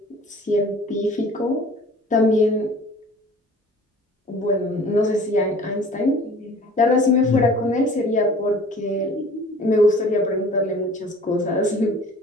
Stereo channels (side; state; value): both; normal; correlation 0.48